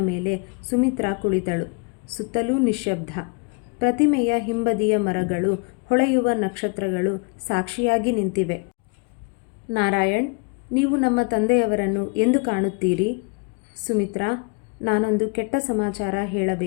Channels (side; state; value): right; quieter; 32.3 dB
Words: ಮೇಲೆ ಸುಮಿತ್ರಾ ಕುಳಿತಳು. ಸುತ್ತಲೂ ನಿಶ್ಶಬ್ದ. ಪ್ರತಿಮೆಯ ಹಿಂಬದಿಯ ಮರಗಳು, ಹೊಳೆಯುವ ನಕ್ಷತ್ರಗಳು ಸಾಕ್ಷಿಯಾಗಿ ನಿಂತಿವೆ. ನಾರಾಯಣ್, ನೀವು ನಮ್ಮ ತಂದೆಯವರನ್ನು ಎಂದು ಕಾಣುತ್ತೀರಿ? ಸುಮಿತ್ರಾ, ನಾನೊಂದು ಕೆಟ್ಟ ಸಮಾಚಾರ